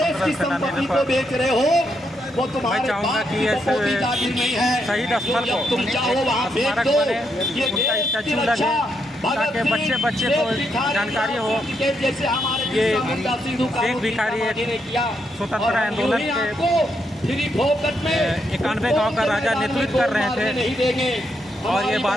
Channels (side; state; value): both; normal; correlation 0.79